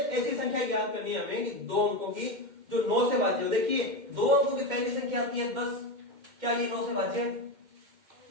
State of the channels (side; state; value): left; late; 2.1 ms